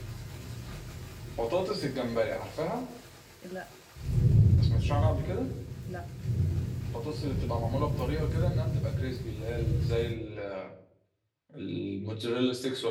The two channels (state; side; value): identical; both; correlation 1.00